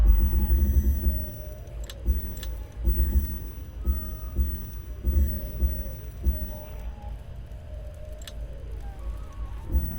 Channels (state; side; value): identical; both; correlation 1.00